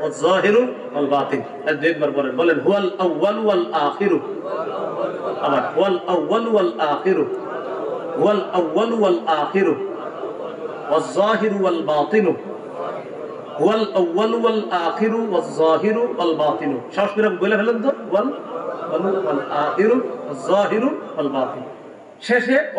যাহিরু ওয়াল বাতিন। দুইবার বলেন, বলেন হুয়াল আউয়াল ওয়াল আখিরু। আবার ওয়াল আউয়াল ওয়াল আখিরু, ওয়াল আউয়াল ওয়াল আখিরু ওয়াল যাহিরু ওয়াল বাতিনু, ওয়াল আউয়াল ওয়াল আখিরু ওয়াল যাহিরু ওয়াল বাতিনু। সাহস করে বলে ফেলেন তো, ওয়াল ওয়াল আখিরু ওয়াল যাহিরু ওয়াল বাতিন। শেষে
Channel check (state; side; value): identical; both; correlation 1.00